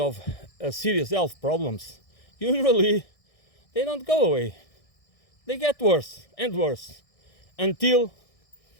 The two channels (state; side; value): late; right; 1.6 ms